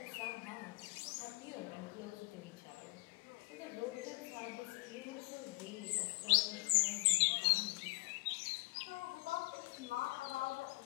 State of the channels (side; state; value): right; quieter; 26.5 dB